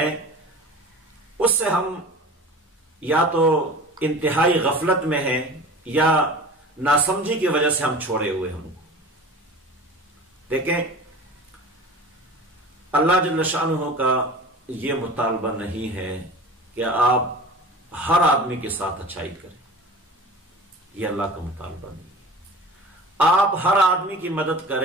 اس سے ہم یا تو انتہائی غفلت میں ہیں، یا ناسمجھی کی وجہ سے ہم چھوڑے ہوئے ہم. دیکھیں، اللہ جل شانہ کا یہ مطالبہ نہیں ہے کہ آپ ہر آدمی کے ساتھ اچھائی کریں، یہ اللہ کا مطالبہ نہیں ہے. آپ ہر آدمی کی مدد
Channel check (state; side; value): normal; both; correlation 0.38